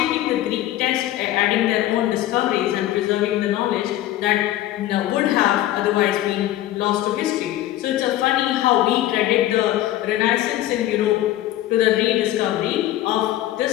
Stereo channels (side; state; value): right; quieter; 14.2 dB